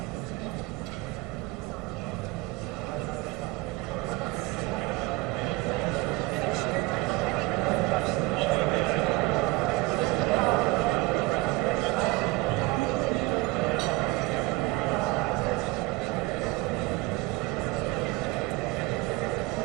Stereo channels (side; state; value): left; quieter; 21.1 dB